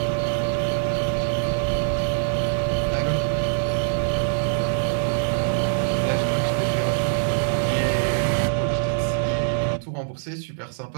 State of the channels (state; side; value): silent; left; digital silence